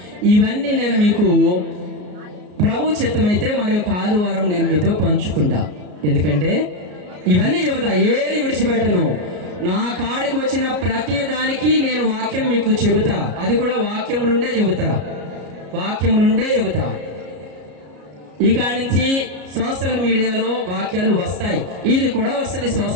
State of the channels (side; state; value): left; late; 33 ms